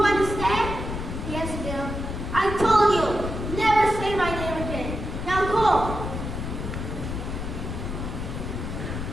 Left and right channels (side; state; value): left; noise; rumble, 5 dB below the sound